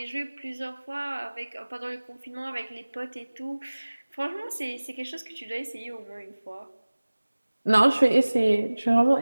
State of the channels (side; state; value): both; inverted; correlation -1.00